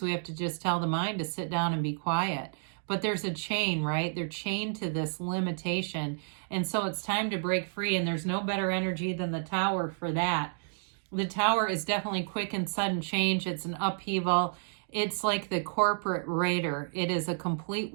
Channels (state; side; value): silent; left; digital silence